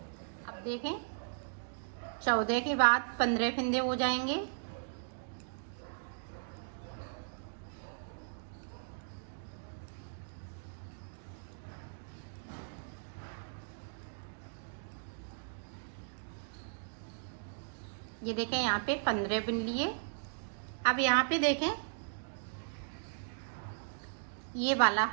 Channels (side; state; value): left; silent; digital silence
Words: अब देखें 14 के बाद 15 फिंदे हो जाएंगे। ये देखें यहाँ पे 15 बिन लिए। अब यहाँ पे देखें ये वाला